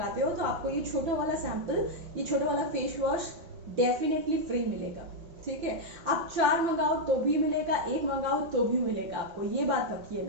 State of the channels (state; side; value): late; left; 6.0 ms